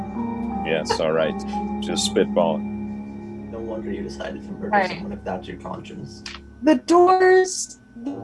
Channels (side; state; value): both; identical; correlation 1.00